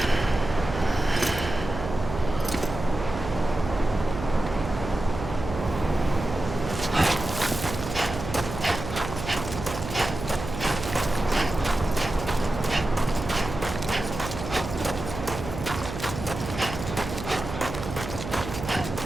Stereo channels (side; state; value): right; noise; hum, 8 dB below the sound